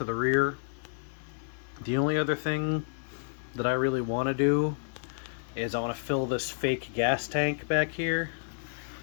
the rear. The only other thing that I really want to do is I want to fill this fake gas tank back here.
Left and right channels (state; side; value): silent; right; digital silence